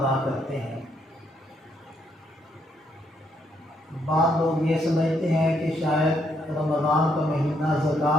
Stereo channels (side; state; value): both; normal; correlation 0.74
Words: کرتے ہیں۔ بعض لوگ یہ سمجھتے ہیں کہ شاید رمضان کا مہینہ